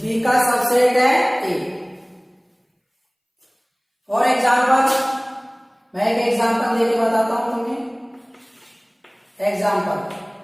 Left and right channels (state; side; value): identical; both; correlation 1.00